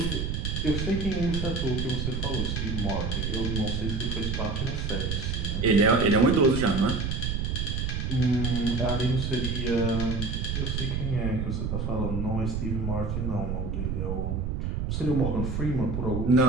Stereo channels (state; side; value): noise; right; rumble, 1 dB below the sound